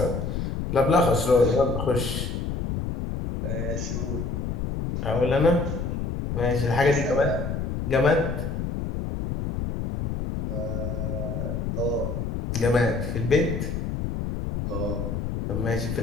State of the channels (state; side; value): noise; left; rumble, 3 dB below the sound